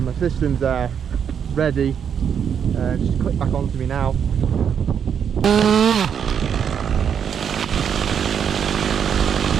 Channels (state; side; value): quieter; left; 7.8 dB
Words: system's there, ready. Just click back onto me now.